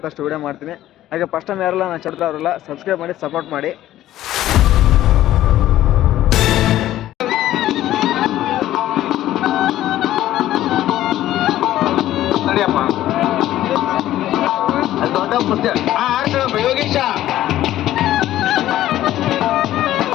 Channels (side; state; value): right; quieter; 13.7 dB